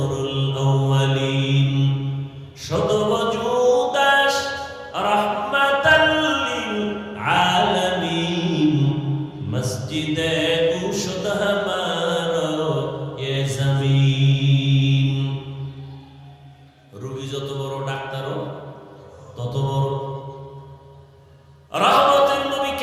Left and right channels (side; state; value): both; identical; correlation 1.00